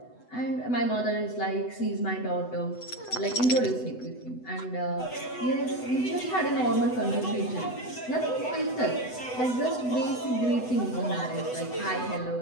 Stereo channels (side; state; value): right; late; 8.0 ms